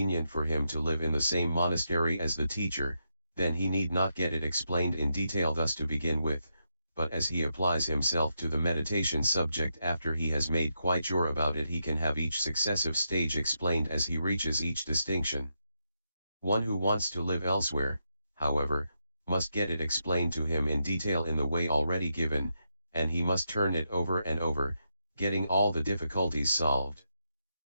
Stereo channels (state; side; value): inverted; both; correlation -0.83